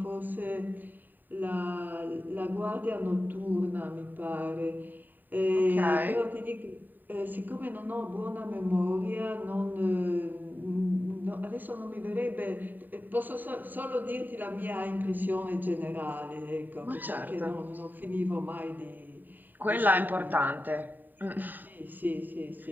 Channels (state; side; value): late; left; 0.089 ms